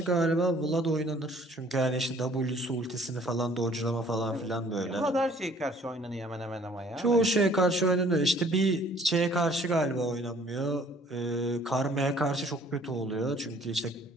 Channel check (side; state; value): both; normal; correlation 0.56